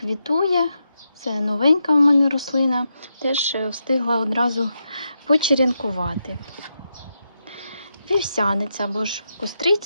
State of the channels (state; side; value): inverted; both; correlation -0.85